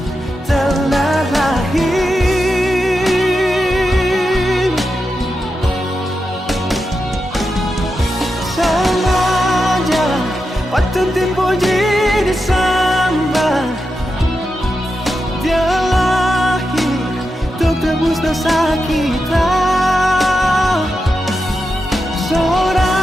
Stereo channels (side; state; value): both; normal; correlation 0.88